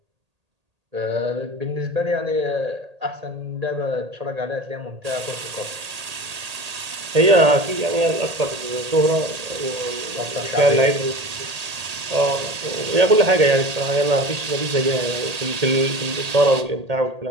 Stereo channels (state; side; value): late; left; 1.8 ms